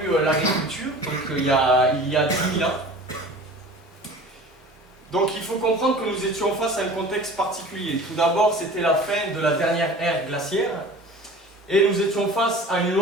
l'agriculture, donc il y a 10 000 ans. Donc il faut comprendre que nous étions face à un contexte particulier. Tout d'abord, c'était la fin de la dernière ère glaciaire. Et nous étions face à une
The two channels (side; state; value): both; normal; correlation 0.41